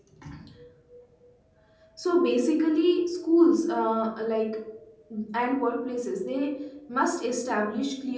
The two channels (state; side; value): identical; both; correlation 1.00